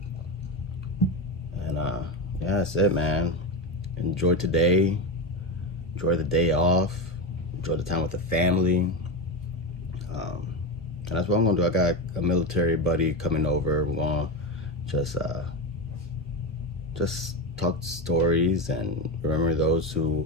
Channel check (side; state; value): both; normal; correlation 0.17